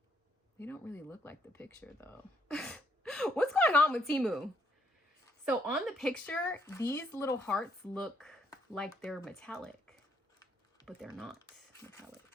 They don't really look like the picture though. What's going on with Temu? So on the picture, these little hearts look like they're metallic, but they're not metallic.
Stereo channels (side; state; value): both; normal; correlation 0.70